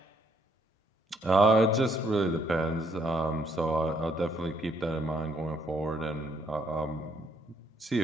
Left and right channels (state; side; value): normal; both; correlation 0.70